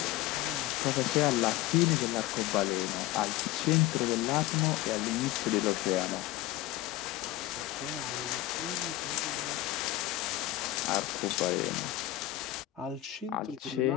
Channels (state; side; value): quieter; right; 15.7 dB